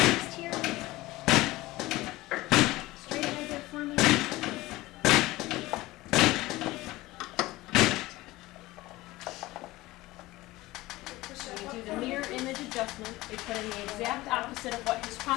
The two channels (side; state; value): right; quieter; 18.9 dB